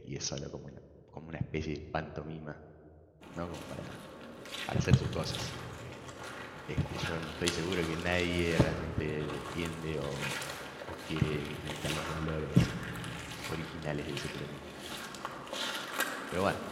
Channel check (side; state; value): both; identical; correlation 1.00